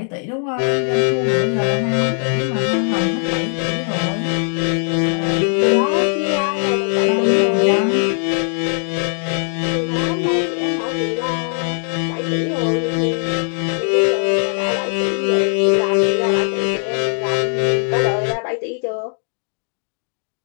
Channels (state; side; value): silent; right; 66 dB below the other